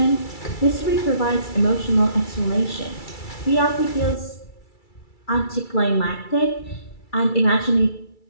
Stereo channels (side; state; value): right; late; 2.3 ms